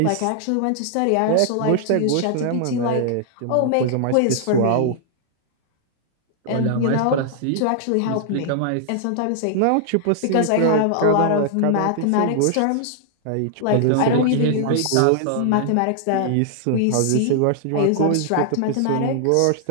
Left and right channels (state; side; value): different; both; correlation 0.00